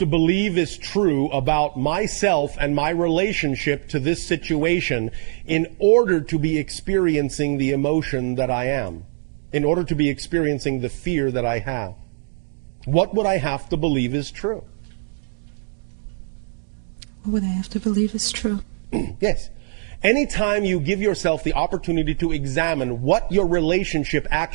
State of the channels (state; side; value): silent; left; digital silence